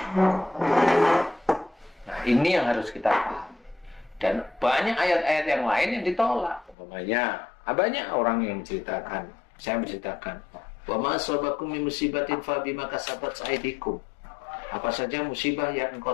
Nah, ini yang harus kita paham. Dan banyak ayat-ayat yang lain yang ditolak. Umpamanya banyak orang yang menceritakan, saya menceritakan, wa ma asabakum min musibatin fa bima kasabat aydikum. Apa saja musibah yang engkau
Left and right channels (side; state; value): right; drops out; at 6.8 s